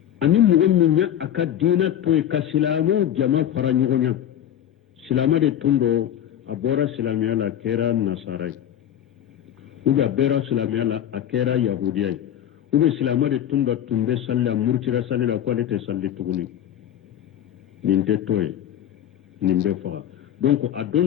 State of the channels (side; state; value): right; quieter; 10.6 dB